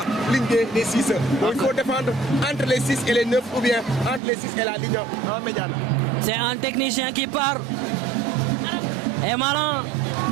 ligne des 6. Donc il faut défendre entre les 6 et les 9 ou bien entre les 6 et la ligne médiane. C'est un technicien qui part. Et maintenant,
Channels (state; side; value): drops out; left; at 4.2 s